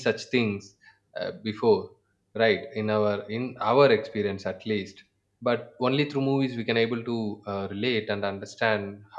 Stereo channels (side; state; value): both; identical; correlation 1.00